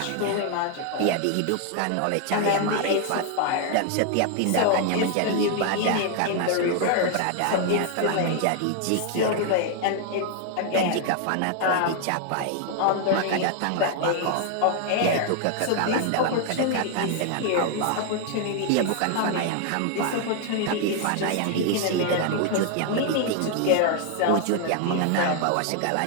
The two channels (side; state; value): both; different; correlation 0.00